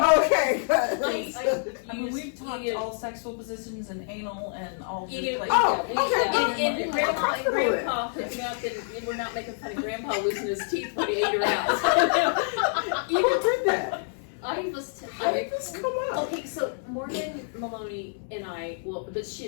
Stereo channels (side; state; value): right; silent; 59 dB below the other